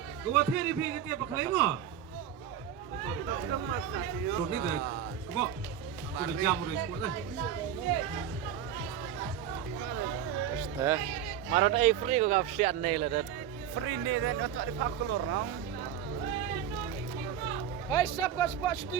Gua theri pi ketia pakai mo. Tuh ni deh. Kebo. Sudah jam udah ikut deh. Este. Marot ai free ko gap sian nei la dat. Free ni dan untuk di pakulur nong. Hai sab ko spot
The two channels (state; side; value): quieter; left; 9.5 dB